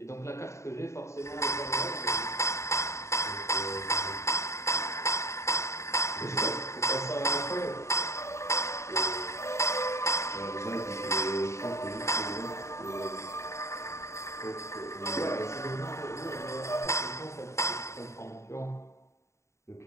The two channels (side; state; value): right; late; 0.14 ms